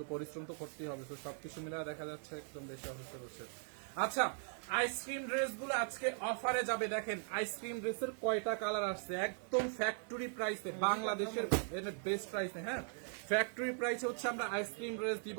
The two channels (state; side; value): silent; left; 51 dB below the other